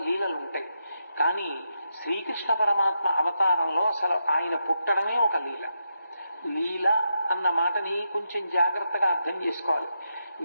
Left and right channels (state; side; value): inverted; both; correlation -0.84